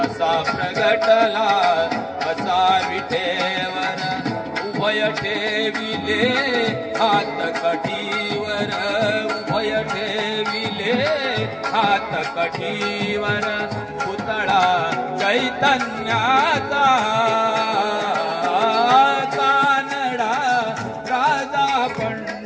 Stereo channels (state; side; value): identical; both; correlation 1.00